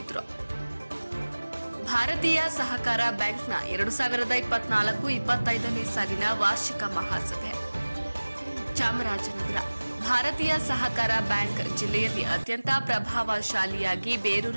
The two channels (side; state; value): both; inverted; correlation -1.00